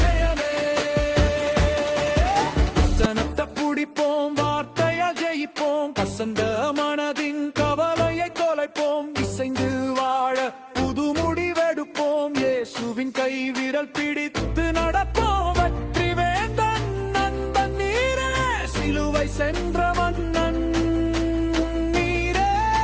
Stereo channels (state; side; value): identical; both; correlation 1.00